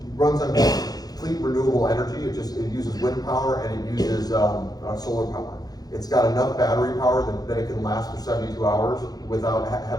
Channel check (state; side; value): late; right; 0.19 ms